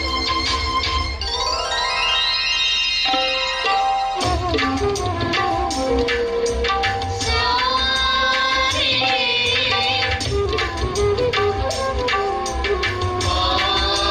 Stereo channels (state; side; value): identical; both; correlation 1.00